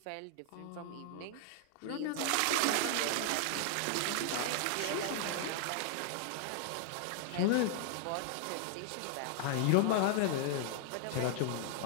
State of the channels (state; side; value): different; both; correlation 0.00